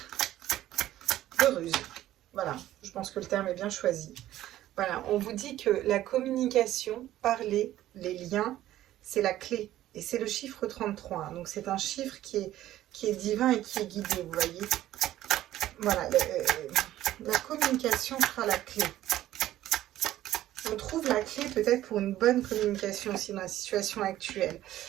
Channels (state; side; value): quieter; left; 13.8 dB